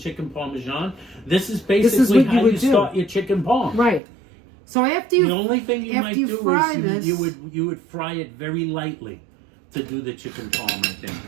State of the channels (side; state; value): left; drops out; at 4.0 s